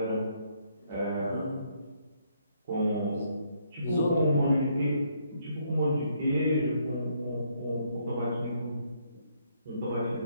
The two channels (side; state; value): both; inverted; correlation -0.71